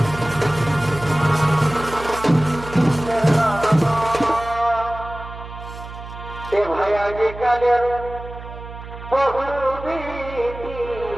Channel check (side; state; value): right; noise; hum, 13 dB below the sound